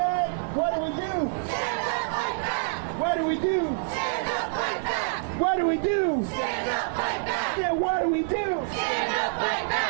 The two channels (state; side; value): silent; left; 57 dB below the other